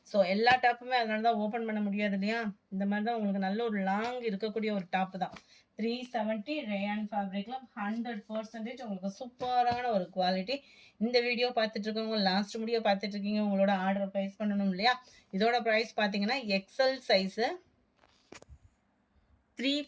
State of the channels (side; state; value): both; identical; correlation 1.00